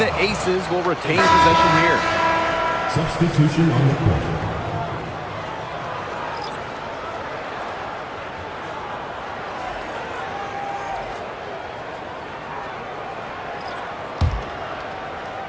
Aces will retain possession here. Substitution on the court.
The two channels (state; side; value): identical; both; correlation 1.00